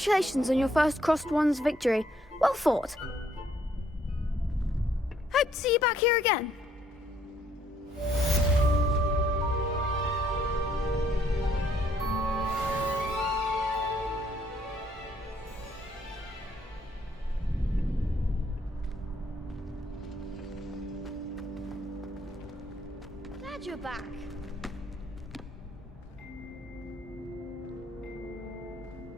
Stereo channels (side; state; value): both; normal; correlation 0.67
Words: on your first Crossed Wands victory. Well fought. Hope to see you back here again. Glad you're back.